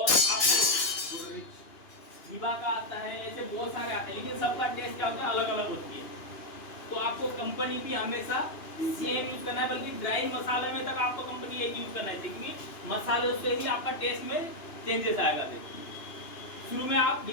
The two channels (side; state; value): right; late; 2.9 ms